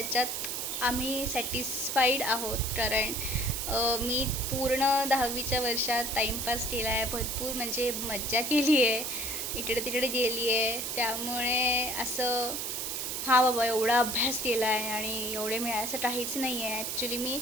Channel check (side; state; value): right; noise; hiss, 3 dB below the sound